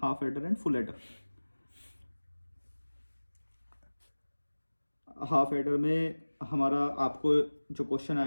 half adder and full adder. Half adder में हमारा आपको जो क्वेश्चन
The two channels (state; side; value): inverted; both; correlation -1.00